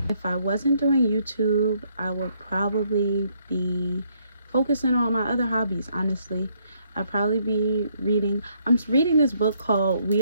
If I wasn't doing YouTube, I would probably be focusing on my other hobbies, honestly. I'd probably be reading. I'm reading this book called We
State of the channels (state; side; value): inverted; both; correlation -0.70